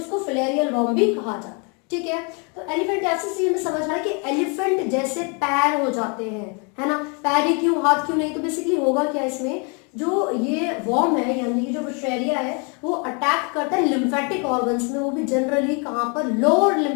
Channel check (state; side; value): quieter; right; 34.8 dB